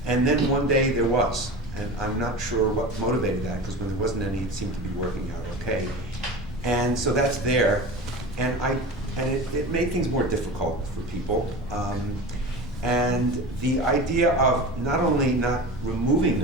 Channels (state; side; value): normal; both; correlation 0.31